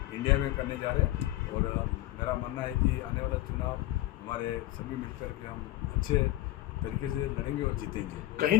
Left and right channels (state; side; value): quieter; right; 16.0 dB